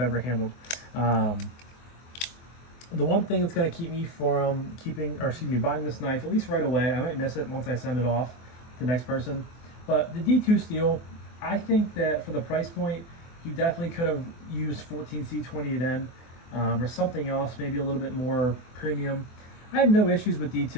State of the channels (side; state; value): right; late; 24 ms